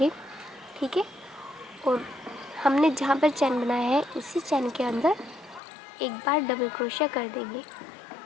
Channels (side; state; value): right; drops out; at 5.6 s